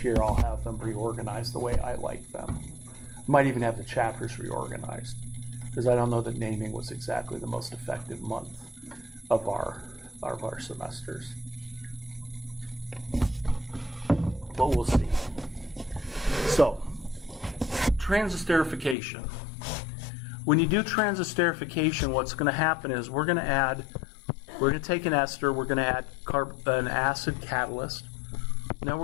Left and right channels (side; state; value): right; drops out; at 18.9 s